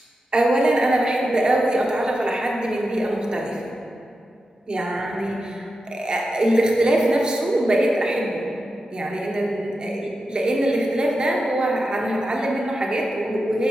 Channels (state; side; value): normal; both; correlation 0.90